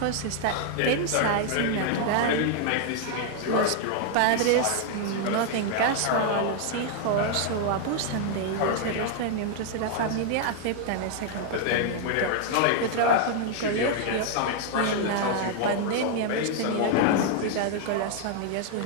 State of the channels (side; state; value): both; different; correlation 0.00